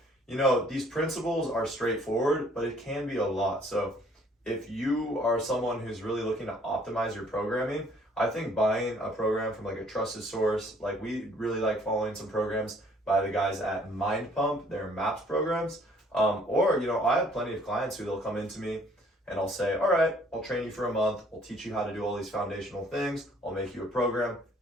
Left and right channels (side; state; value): both; normal; correlation 0.60